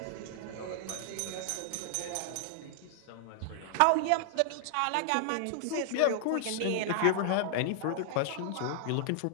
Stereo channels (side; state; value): both; different; correlation -0.01